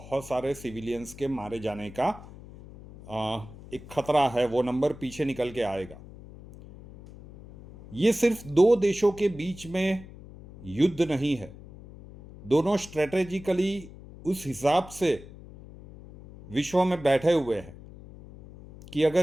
सारे सिविलियंस के मारे जाने का एक खतरा है। वो नंबर पीछे निकल के आएगा। ये सिर्फ दो देशों के बीच में युद्ध नहीं है। दोनों स्ट्रेटेजिकली उस हिसाब से विश्व में बैठे हुए हैं कि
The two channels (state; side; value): noise; left; hum, 17 dB below the sound